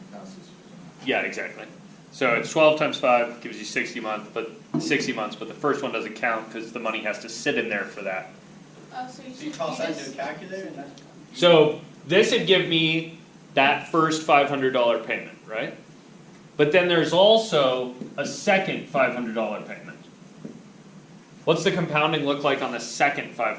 count 60. Yeah, exactly. So it's 12 times 5 gives you 60 months, but the first one doesn't count because the money has to sit in there for that. oh, so you So you should toss that just- into a calculator and that's. So this would give me that first $500 payment, right? But then there's also a second $500 payment. What's the compounding look like on the second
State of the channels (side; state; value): both; identical; correlation 1.00